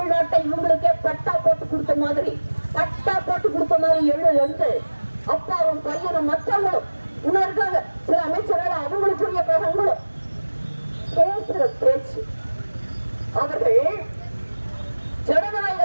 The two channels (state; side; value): inverted; both; correlation -1.00